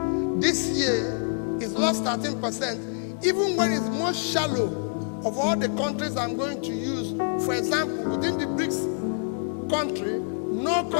This year, it's lost 13%, even when it's most shallow of all the countries I'm going to use. For example, within the BRICS country, no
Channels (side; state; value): right; silent; 61 dB below the other